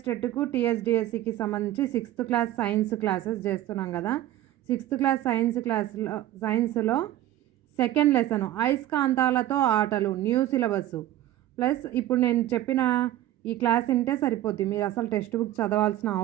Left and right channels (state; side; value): quieter; left; 13.8 dB